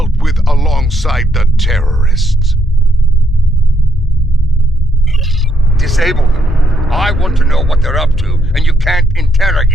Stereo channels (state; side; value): normal; both; correlation 0.76